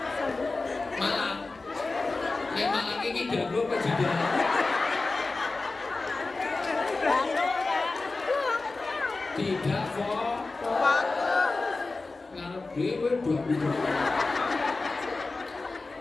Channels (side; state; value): right; quieter; 3.6 dB